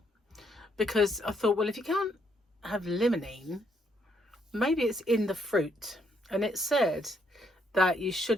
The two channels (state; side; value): normal; both; correlation 0.72